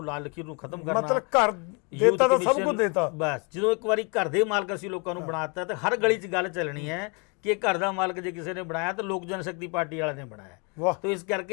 ਲਾਲ ਲਕੀਰ ਨੂੰ ਖਤਮ ਕਰਨਾ, ਮਤਲਬ ਘਰ ਦੇਤਾ ਤਾਂ ਸਭ ਕੁਝ ਦੇਤਾ। ਬਸ ਜਦੋਂ ਇੱਕ ਵਾਰੀ ਘਰ ਦੇ ਮਾਲਕ ਅਸੀਂ ਲੋਕਾਂ ਨੂੰ ਬਣਾਤਾ ਤੇ ਹਰ ਗਲੀ 'ਚ ਗੱਲ ਚੱਲਣੀ ਹੈ ਕਿ ਘਰ ਦਾ ਮਾਲਕ ਜੇ ਕਿਸੇ ਨੇ ਬਣਾਇਆ ਤਾਂ ਲੋਕ ਜਨਸ਼ਕਤੀ ਪਾਰਟੀ ਵਾਲਿਆਂ ਨੇ ਬਣਾਇਆ। ਤੇ ਇਸ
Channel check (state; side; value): quieter; right; 33.4 dB